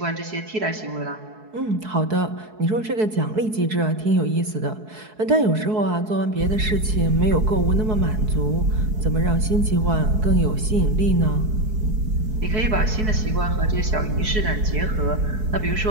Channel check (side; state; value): left; late; 4.7 ms